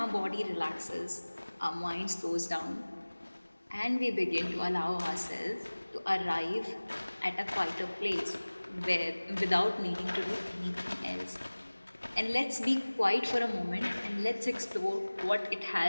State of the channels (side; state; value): both; inverted; correlation -1.00